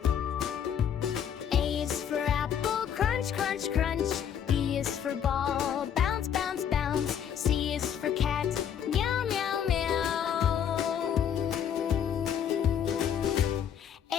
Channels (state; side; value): quieter; right; 8.6 dB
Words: A is for apple, crunch, crunch, crunch. B is for ball, bounce, bounce, bounce. C is for cat, meow, meow, meow.